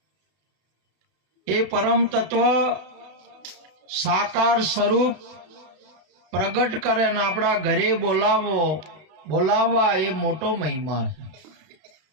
એ પરમ તત્વ સાકાર સ્વરૂપ પ્રગટ કરે ને આપણા ઘરે બોલાવવા એ મોટો મહિમા છે.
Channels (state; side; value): late; left; 31 ms